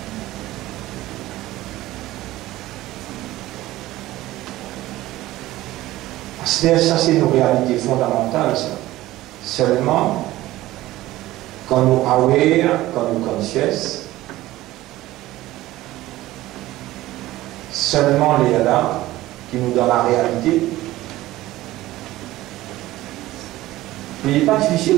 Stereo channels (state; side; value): quieter; left; 16.5 dB